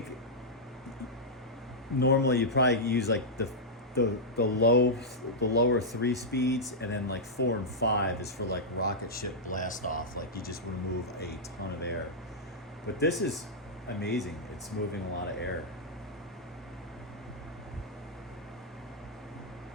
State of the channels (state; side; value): normal; both; correlation -0.08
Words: normally you probably use like the lower 3 speeds, and then like 4 and 5 is for like rocket ship blast off, like you just remove a ton of air. But this is amazing. It's moving a lot of air.